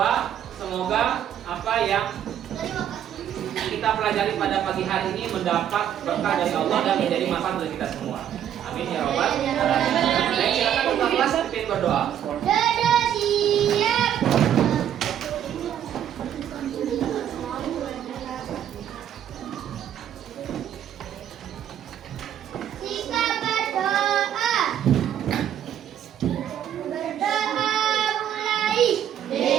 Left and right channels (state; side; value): quieter; left; 10.1 dB